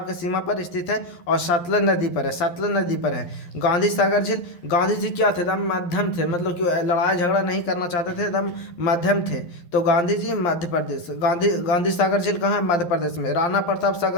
के सीमा पर स्थित है और सतलज नदी पर है। सतलज नदी पर है। गांधी सागर झील, गांधी जी क्या थे? एकदम मध्यम थे, मतलब कि लड़ाई झगड़ा नहीं करना चाहते थे, एकदम मध्यम थे। तो गांधी जी मध्य प्रदेश। गांधी सागर झील कहाँ है? मध्य प्रदेश में। राणा प्रताप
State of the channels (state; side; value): late; right; 12 ms